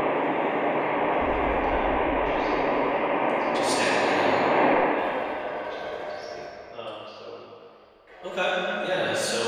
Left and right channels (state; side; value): identical; both; correlation 1.00